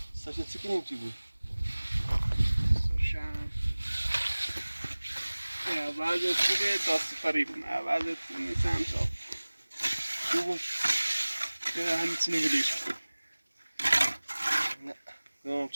Saša cikinim ti بود. Slušam. Ja, بعضی خوبه تا سفری بودم. بعضی خوب نیستم تا. خوبه؟ همچنین بودیش. نه، نمیم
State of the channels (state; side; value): inverted; both; correlation -1.00